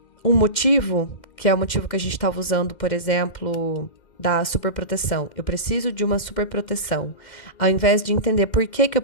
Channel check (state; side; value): late; right; 2.1 ms